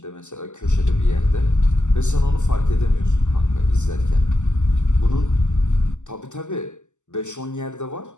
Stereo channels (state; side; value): late; right; 0.84 ms